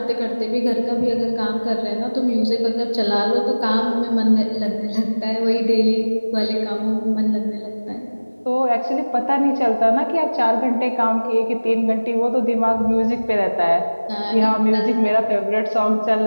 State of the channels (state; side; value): inverted; both; correlation -1.00